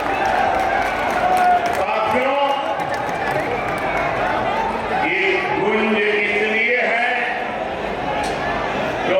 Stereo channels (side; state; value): both; identical; correlation 1.00